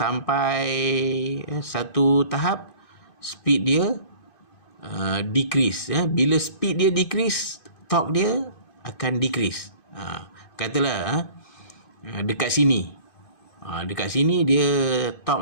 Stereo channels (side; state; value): right; late; 2.5 ms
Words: satu tahap speed dia decrease. Bila speed dia decrease, torque dia akan decrease. Katalah dekat sini, dekat sini dia